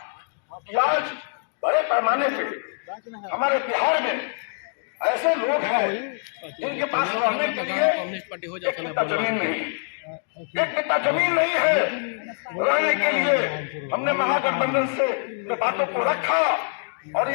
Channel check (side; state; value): right; silent; 59 dB below the other